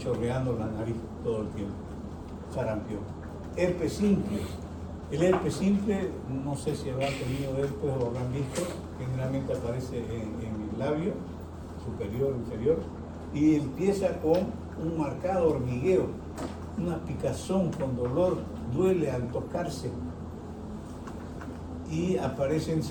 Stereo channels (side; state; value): both; identical; correlation 1.00